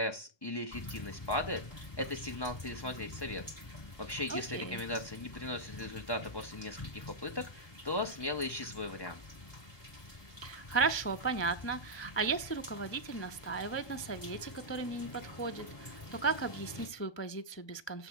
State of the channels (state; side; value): late; right; 1.2 ms